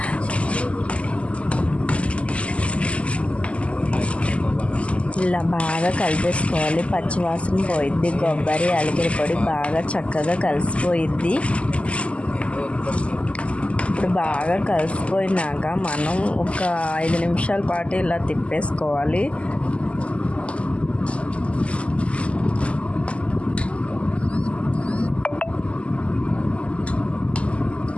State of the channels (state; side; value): late; right; 0.059 ms